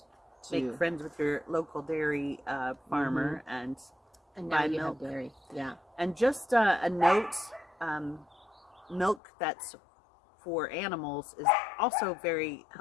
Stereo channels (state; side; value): drops out; right; at 9.2 s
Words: Make friends with your local dairy farmer and now buy you milk. have dairy. Yeah. And just a note, milk that's for animals is also very